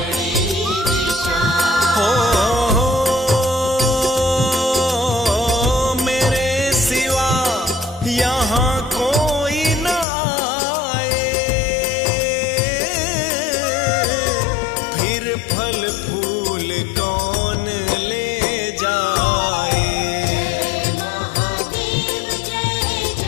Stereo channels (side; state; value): right; drops out; at 10.1 s